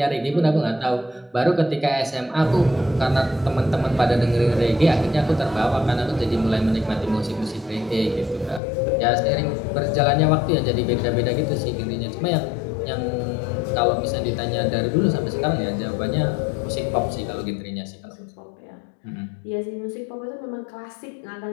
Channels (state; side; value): drops out; right; at 8.6 s